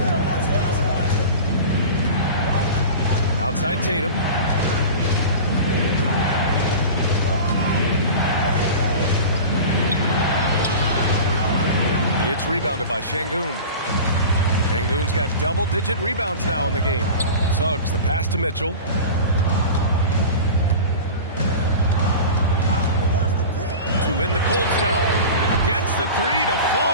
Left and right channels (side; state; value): both; inverted; correlation -0.33